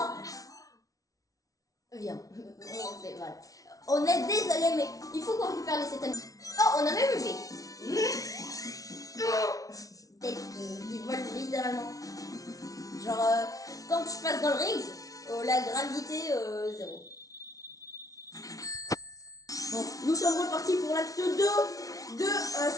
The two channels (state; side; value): late; right; 0.18 ms